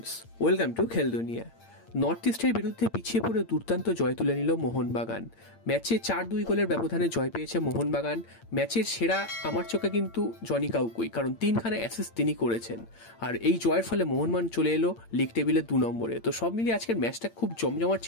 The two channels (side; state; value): right; late; 8.8 ms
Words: welcome to খেল দুনিয়া। North ইস্টের বিরুদ্ধে পিছিয়ে পড়ে দুর্দান্ত জয় তুলে নিল মোহনবাগান। ম্যাচে 4-2 গোলের ব্যবধানে জয় পেয়েছে মোহনবাগান। ম্যাচের সেরা আমার চোখে কিন্তু জনি কাউকুই, কারণ 3খানা অ্যাসিস্ট তিনি করেছেন। আর এই জয়ের ফলে মোহনবাগান চলে এলো লিগ টেবিলে 2 নম্বরে। তো সব মিলিয়ে আজকের ম্যাচটা খুব জমজমাট